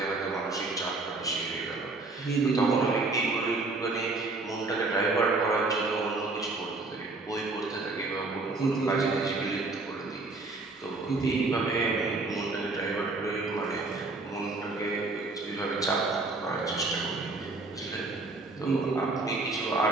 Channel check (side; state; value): left; quieter; 3.4 dB